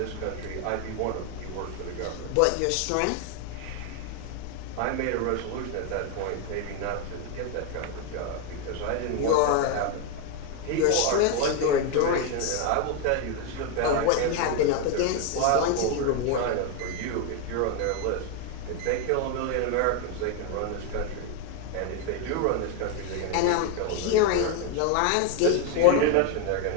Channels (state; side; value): different; both; correlation 0.01